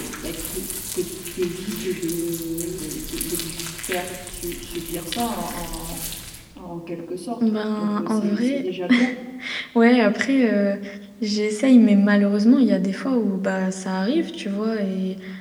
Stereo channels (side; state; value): both; identical; correlation 1.00